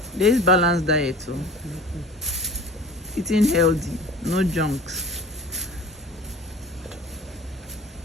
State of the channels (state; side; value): normal; both; correlation 0.42